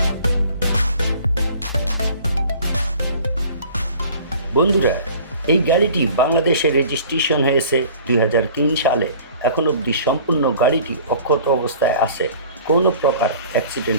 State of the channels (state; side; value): inverted; both; correlation -0.47